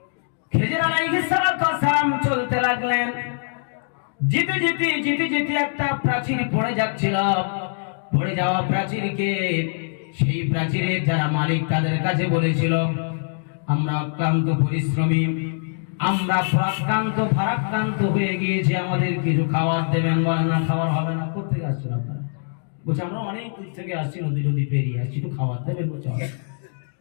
খেজর আলাইহিস সালাতু ওয়াস সালাম চলতে লাগলেন। যেতে যেতে একটা প্রাচীর পড়ে যাচ্ছিল। পড়ে যাওয়া প্রাচীরকে সেই প্রাচীরের যারা মালিক তাদের কাছে বলেছিল, আমরা অক্লান্ত পরিশ্রমী, আমরা ফারাক্রান্ত হয়ে গিয়েছি, আমাদের কিছু খাবার দেবেন। বলে, না খাবার হবে না। কোথেকে আসছেন আপনারা? বলছে, আমরা অনেক দূর থেকে আসছি, নদী পেরিয়ে আসছি, একটু খাবার দেবেন। বলছে,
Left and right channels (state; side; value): silent; right; digital silence